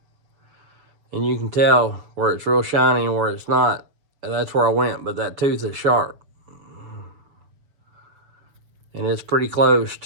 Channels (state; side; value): late; left; 6.9 ms